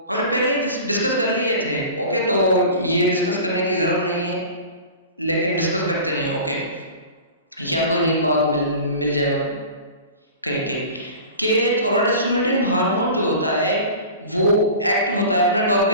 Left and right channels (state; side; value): inverted; both; correlation -0.38